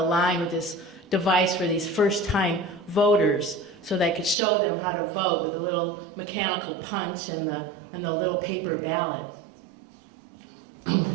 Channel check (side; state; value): left; drops out; at 4.4 s